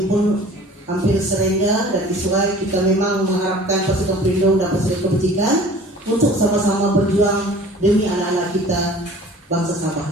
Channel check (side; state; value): both; normal; correlation 0.46